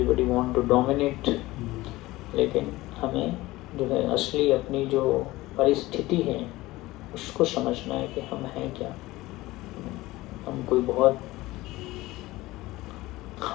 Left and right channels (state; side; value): quieter; right; 18.8 dB